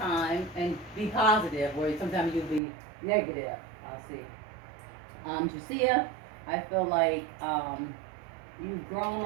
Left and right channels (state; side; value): drops out; left; at 2.6 s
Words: and be positive, where sometimes you'll be negative. I'll see. Jacia, I feel like you've grown